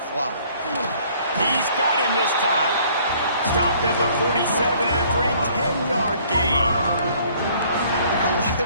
He's got him this time. Stopped at the 47 after a 10-yard gain. There are a lot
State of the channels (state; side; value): inverted; both; correlation -0.59